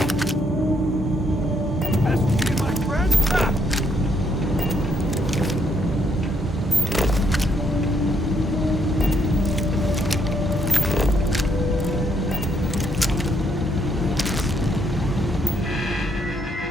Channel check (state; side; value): normal; both; correlation 0.73